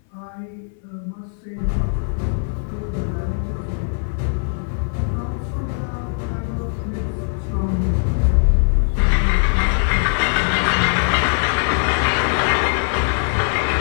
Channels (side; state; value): right; silent; 62 dB below the other